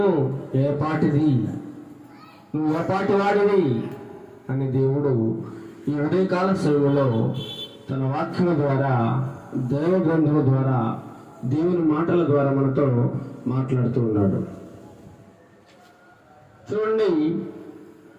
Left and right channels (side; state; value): both; identical; correlation 1.00